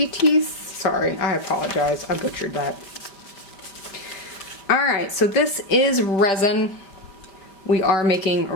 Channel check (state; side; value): late; right; 5.1 ms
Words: Sorry, I apologize. I butchered that. Alright, so this is resin. We are making